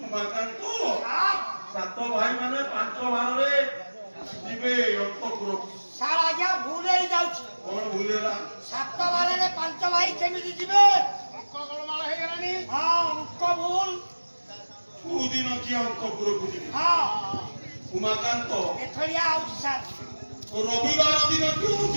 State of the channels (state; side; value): inverted; both; correlation -1.00